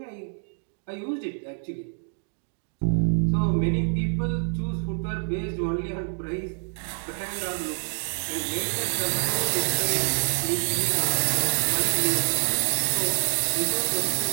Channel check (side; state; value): left; silent; digital silence